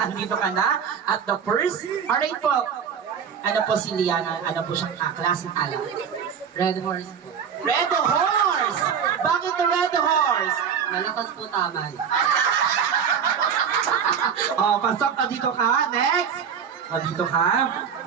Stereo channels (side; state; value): left; quieter; 7.3 dB